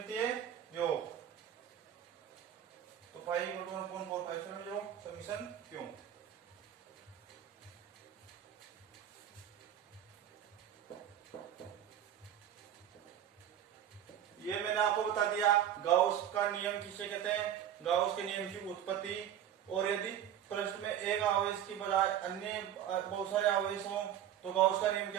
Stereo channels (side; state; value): left; quieter; 10.4 dB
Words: योग। तो फाइव इक्वल टू 1/4 समीशन क्यों। ये मैंने आपको बता दिया गाउस का नियम किसे कहते हैं, गाउस के नियम की उत्पत्ति। और यदि प्रश्न में एक आवेश की बजाय अन्य बहुत सारे आवेश हों तो गाउस का नियम